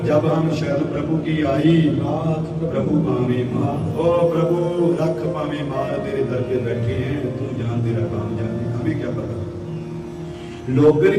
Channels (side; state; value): both; identical; correlation 1.00